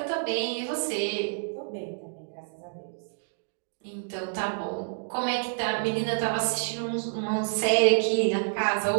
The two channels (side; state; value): left; silent; digital silence